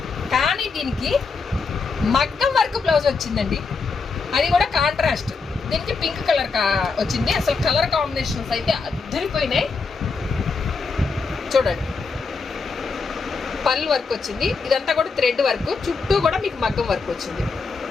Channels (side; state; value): right; quieter; 4.6 dB